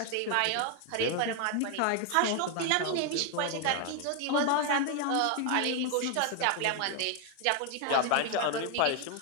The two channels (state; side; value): different; both; correlation 0.00